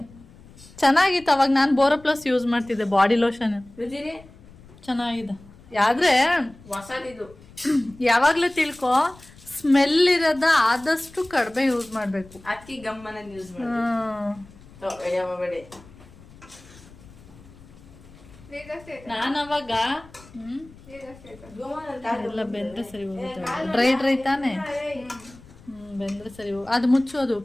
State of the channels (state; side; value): noise; left; rumble, 22 dB below the sound